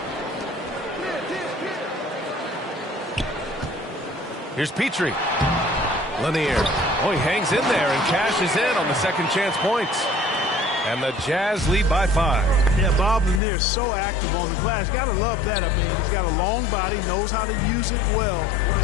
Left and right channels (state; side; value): drops out; right; at 13.4 s